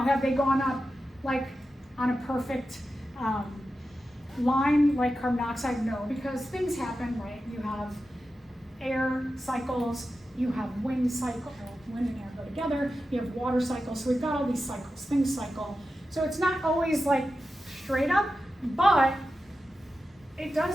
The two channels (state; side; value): normal; both; correlation 0.91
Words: have they gone up like on a perfect line like carbon dioxide? No, because things happen, right? You have air cycles, you have wind cycle, wind and air go together, you have water cycles, so we've got all these cycles, things cycle. So it's not always like straight up, but it